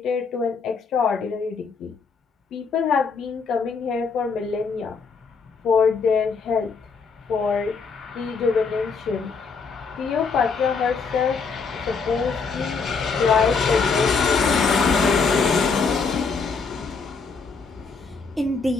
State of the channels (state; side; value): quieter; right; 5.0 dB